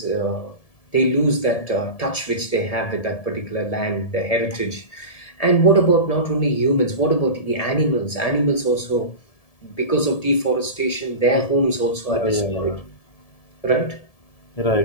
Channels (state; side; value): late; right; 1.7 ms